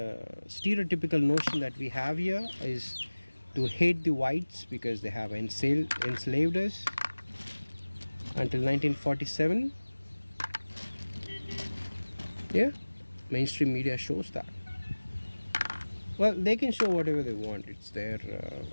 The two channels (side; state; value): both; inverted; correlation -1.00